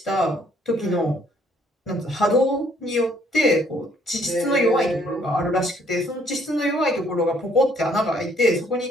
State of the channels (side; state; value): both; normal; correlation 0.64